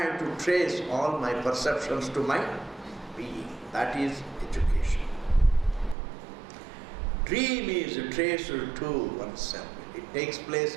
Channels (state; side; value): drops out; left; at 6.0 s